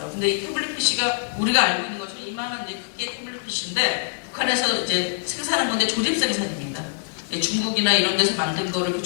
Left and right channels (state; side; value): silent; right; 63 dB below the other